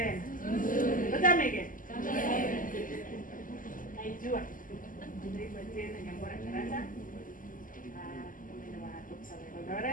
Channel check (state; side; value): late; right; 0.39 ms